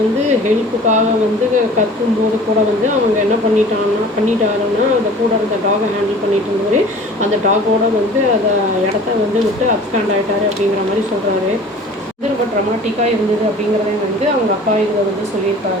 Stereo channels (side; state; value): both; normal; correlation 0.44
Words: வந்து ஹெல்ப்புக்காக வந்து கத்தும்போது கூட வந்து அவங்க என்ன பண்ணிட்டாருன்னா அந்த கூட இருந்த டாகை ஹேண்டில் பண்ணிட்டு இருந்தவர் அந்த டாகோட வந்து அதை இடத்த வந்து விட்டு அப்ஸ்டாண்ட் ஆகிட்டாரு அப்படிங்கிற மாதிரி சொல்கிறாரு. வந்து ரொம்ப ட்ரமாட்டிக்காக இருந்தது அப்படிங்கிறதையும் வந்து அவங்க அப்பா இதில் வந்து